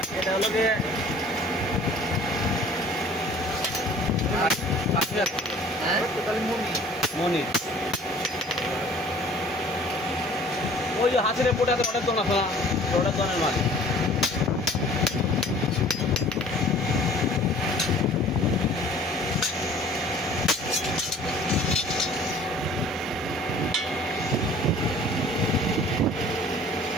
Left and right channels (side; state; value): both; normal; correlation 0.50